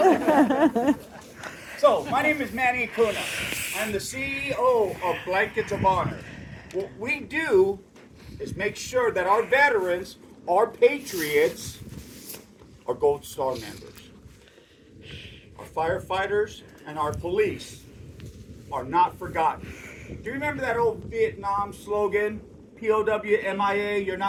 So, my name is Manny Acuna. I'm the CEO of Blankets of Honor. What we do is make sure that our veterans, our patriots, our Gold Star members, our firefighters, and our police are not forgotten. Do you remember that old Vietnam slogan, POW MIA, you're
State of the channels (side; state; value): both; identical; correlation 1.00